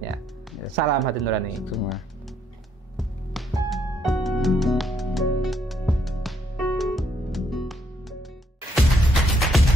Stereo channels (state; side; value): normal; both; correlation 0.71